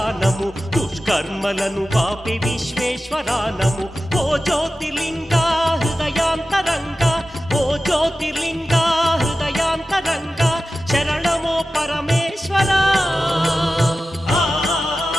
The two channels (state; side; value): normal; both; correlation 0.94